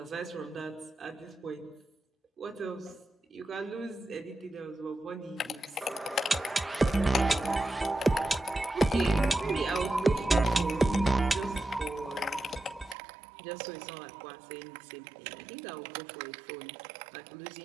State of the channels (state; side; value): drops out; left; at 13.0 s